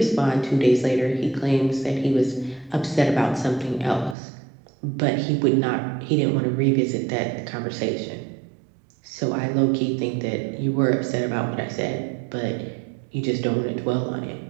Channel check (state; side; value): drops out; left; at 4.2 s